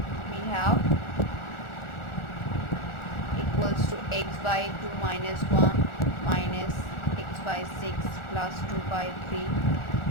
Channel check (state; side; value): late; right; 1.4 ms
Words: have equals to X by 2 minus 1 minus X by 6 plus 2 by 3